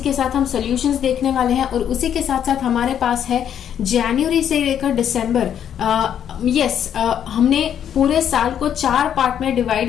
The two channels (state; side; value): quieter; right; 9.3 dB